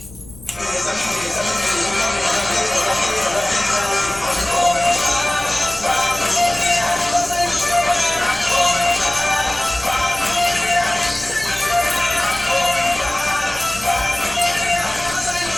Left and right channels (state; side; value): noise; left; rumble, 19 dB below the sound